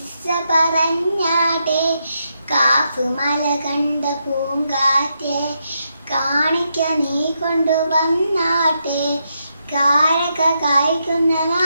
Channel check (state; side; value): inverted; both; correlation -0.82